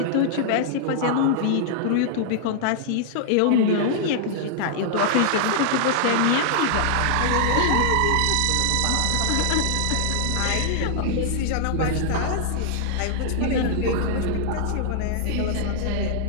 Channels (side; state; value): both; different; correlation -0.01